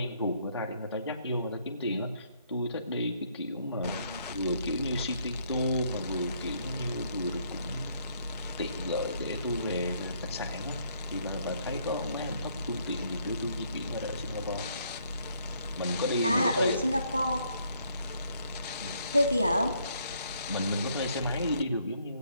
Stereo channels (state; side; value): inverted; both; correlation -0.69